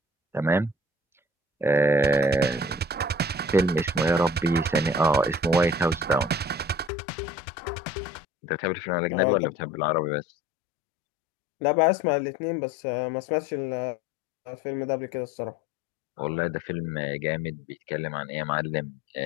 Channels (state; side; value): drops out; right; at 6.9 s